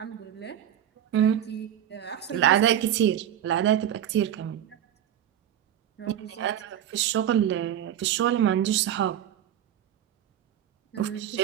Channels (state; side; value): quieter; left; 10.6 dB